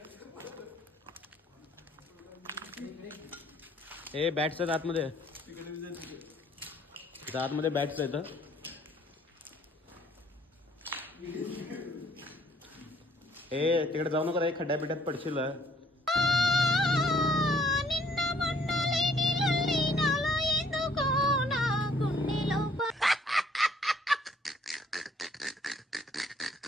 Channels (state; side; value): normal; both; correlation 0.61